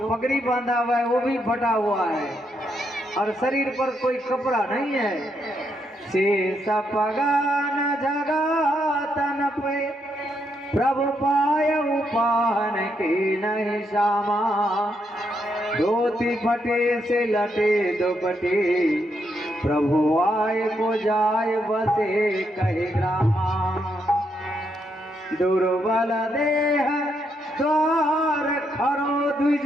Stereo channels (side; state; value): both; normal; correlation 0.78